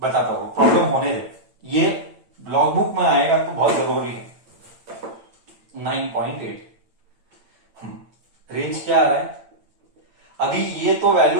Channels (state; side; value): late; left; 8.9 ms